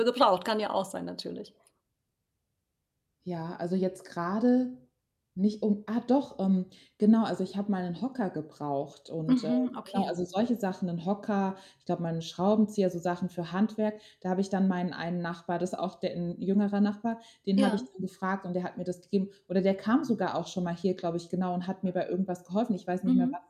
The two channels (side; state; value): both; identical; correlation 1.00